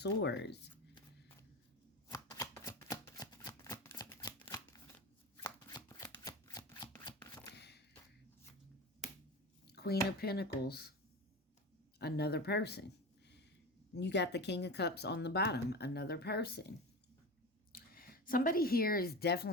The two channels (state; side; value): normal; both; correlation 0.27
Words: Queen of Pentacles, another person. You got the King of Cups on the bottom, another person. Somebody here is